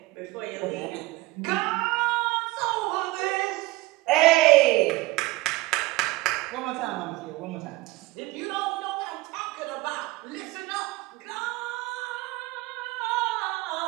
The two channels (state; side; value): quieter; left; 20.1 dB